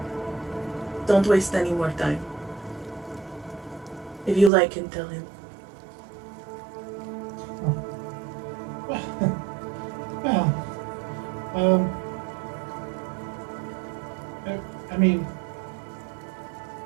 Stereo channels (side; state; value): left; drops out; at 4.5 s